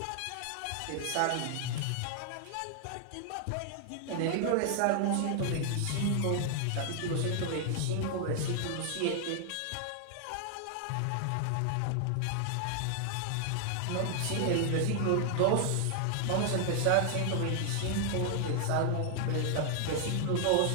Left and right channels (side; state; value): both; different; correlation 0.00